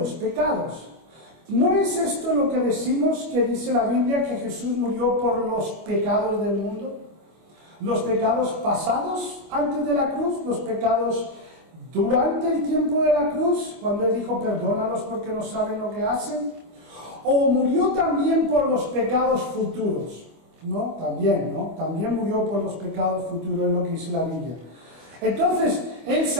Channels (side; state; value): left; late; 25 ms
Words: pecados. ¿No es esto lo que decimos que dice la Biblia, que Jesús murió por los pecados del mundo? Los pecados pasados antes de la cruz, los pecados durante el tiempo de la cruz, cuando Él dijo, perdónalos porque no saben lo que hacen. O murió también por los pecados futuros. ¿No? También, ¿no? También murió por los pecados futuros, es lo que dice la Biblia. Entonces, Él